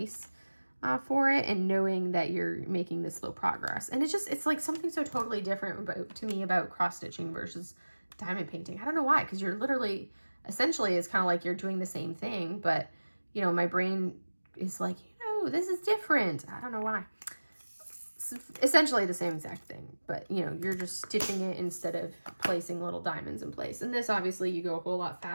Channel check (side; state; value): both; inverted; correlation -1.00